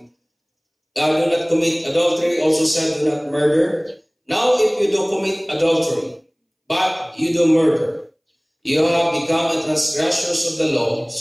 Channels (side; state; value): both; identical; correlation 1.00